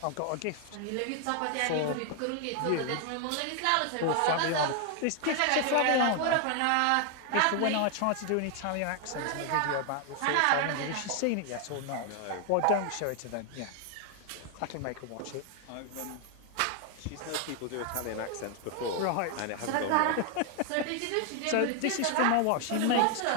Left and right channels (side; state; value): both; different; correlation 0.00